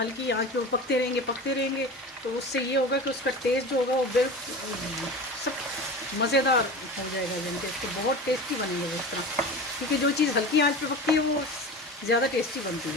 आंच पे वो पकते रहेंगे। तो उससे ये होगा कि उसका टेस्ट जो होगा वो बिल्कुल सब मज़ेदार हो जाएगा, यानी कि इसको बहुत टेस्टी बनेंगे वो इस तरह, क्योंकि जो चीज़ हल्की आंच पे पकती है वो ज़्यादा टेस्टी बनती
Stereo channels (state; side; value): normal; both; correlation 0.32